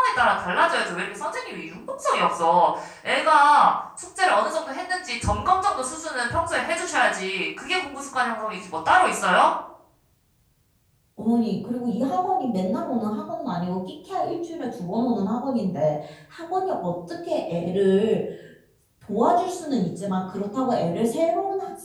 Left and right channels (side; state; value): both; identical; correlation 1.00